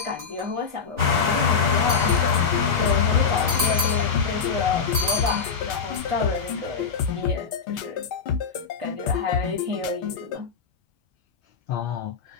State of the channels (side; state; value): right; quieter; 5.9 dB